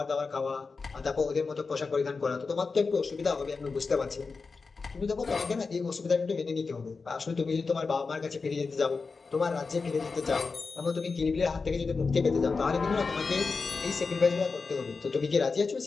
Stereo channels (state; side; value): quieter; right; 4.5 dB